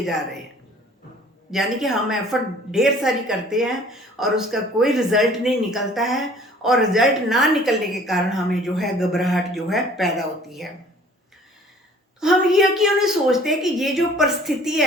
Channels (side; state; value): both; normal; correlation 0.52